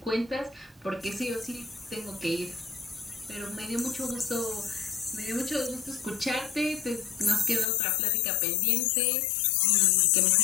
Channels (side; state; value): right; drops out; at 7.7 s